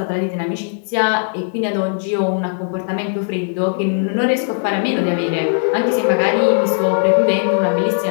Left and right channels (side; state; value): right; silent; 67 dB below the other